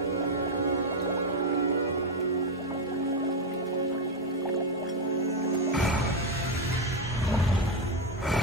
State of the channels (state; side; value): normal; both; correlation 0.07